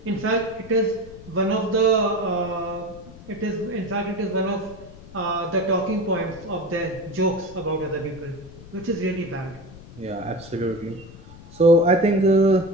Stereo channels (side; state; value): left; noise; rumble, 18 dB below the sound